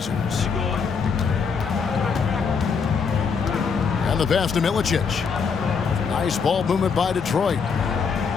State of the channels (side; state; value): right; quieter; 5.7 dB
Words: And the pass to Milicic. Nice ball movement by Detroit.